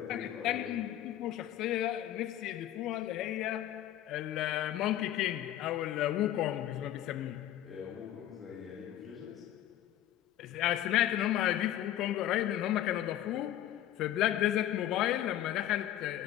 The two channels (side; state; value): right; quieter; 12.5 dB